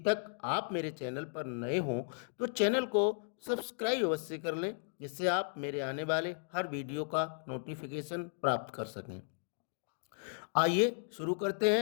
आप मेरे चैनल पर नए हों तो चैनल को सब्सक्राइब अवश्य कर लें, जिससे आप मेरे आने वाले हर वीडियो का नोटिफिकेशन प्राप्त कर सकें। आइए शुरू करते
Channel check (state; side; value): silent; right; digital silence